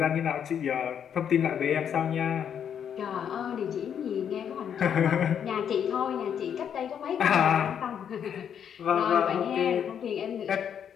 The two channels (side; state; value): right; quieter; 8.4 dB